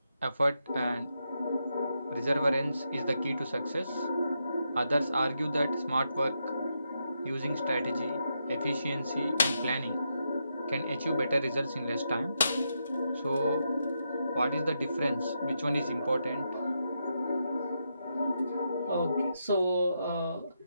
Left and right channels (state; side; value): inverted; both; correlation -0.83